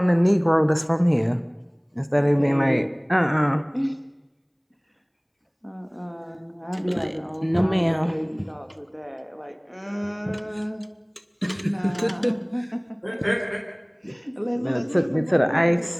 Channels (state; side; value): identical; both; correlation 1.00